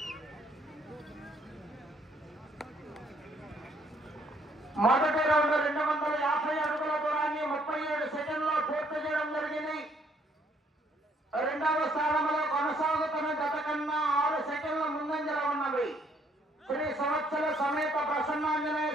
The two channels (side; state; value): both; normal; correlation 0.66